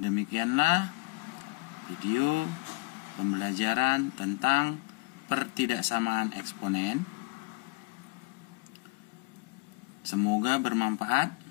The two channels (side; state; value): right; quieter; 25.9 dB